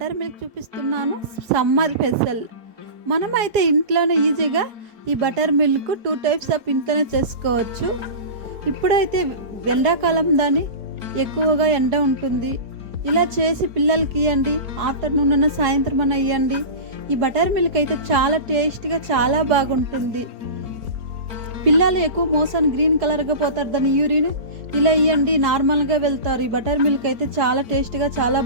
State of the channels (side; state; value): left; late; 4.8 ms